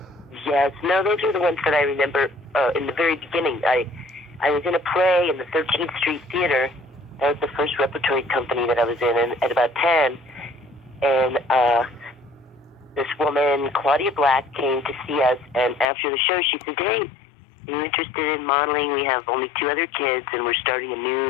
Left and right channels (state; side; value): drops out; right; at 15.9 s